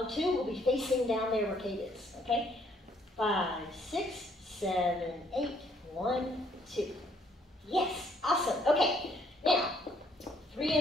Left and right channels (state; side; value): normal; both; correlation 0.66